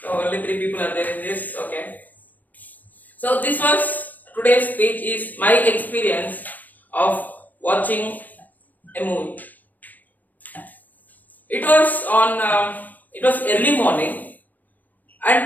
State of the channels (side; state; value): right; late; 0.085 ms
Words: only 3 people are there in this. Okay. So this was today's speech is my experience of watching a movie. It was early morning,